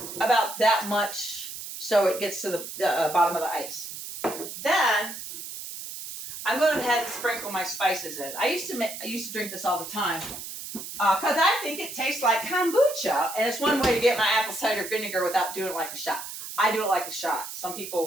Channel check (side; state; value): right; noise; hiss, 9 dB below the sound